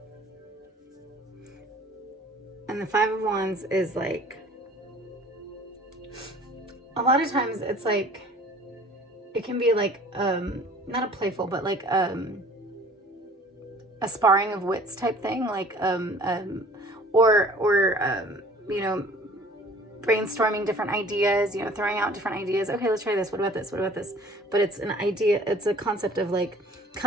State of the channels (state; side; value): normal; both; correlation 0.50